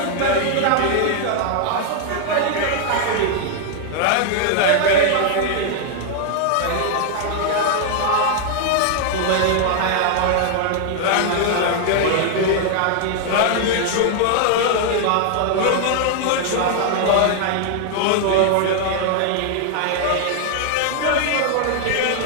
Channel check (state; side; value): different; both; correlation 0.00